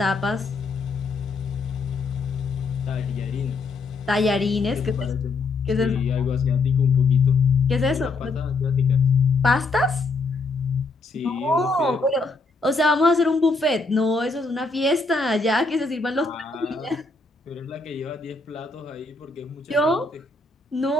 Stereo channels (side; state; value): right; quieter; 3.7 dB